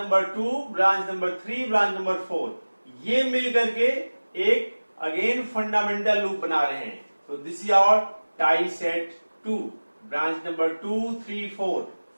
2, branch number 3, branch number 4, ये मिल करके एक अगेन फंडामेंटल लूप बना रहे हैं। तो this is our tie set 2, branch number 2, 3, 4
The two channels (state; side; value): inverted; both; correlation -1.00